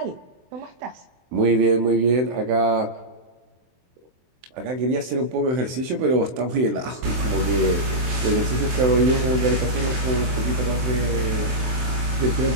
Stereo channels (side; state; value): left; late; 23 ms